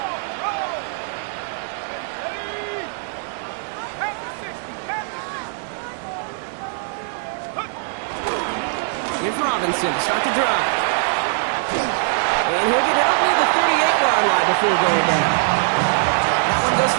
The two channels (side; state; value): left; silent; digital silence